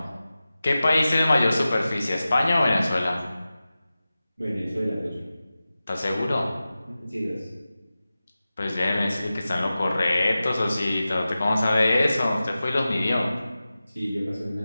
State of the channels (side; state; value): both; inverted; correlation -0.95